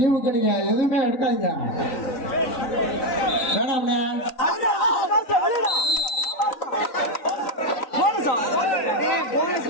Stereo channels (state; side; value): late; right; 3.9 ms